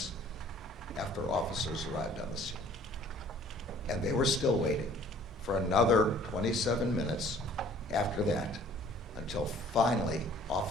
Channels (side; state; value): both; normal; correlation 0.54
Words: after officers arrived on the scene. And they were still waiting for another 27 minutes after that until finally